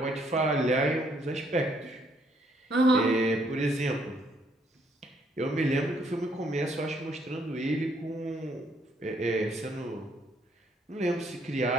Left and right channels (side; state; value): both; normal; correlation 0.69